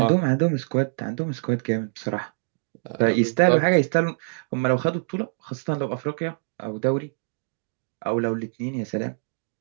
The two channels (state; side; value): silent; left; digital silence